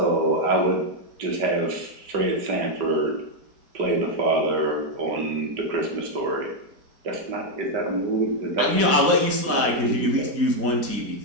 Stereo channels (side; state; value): left; late; 4.2 ms